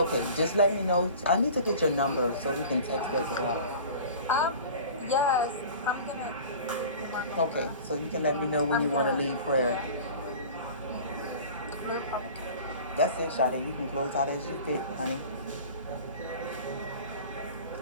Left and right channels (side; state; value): both; inverted; correlation -0.40